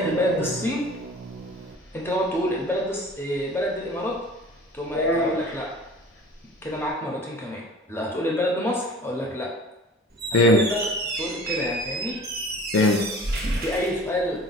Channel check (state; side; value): normal; both; correlation 0.44